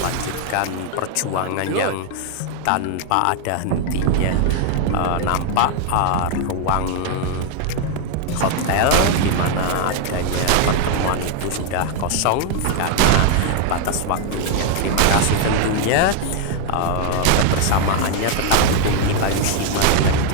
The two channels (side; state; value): both; different; correlation 0.00